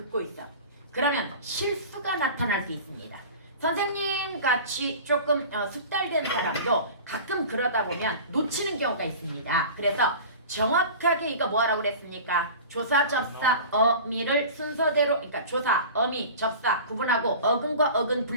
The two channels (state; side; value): inverted; both; correlation -0.37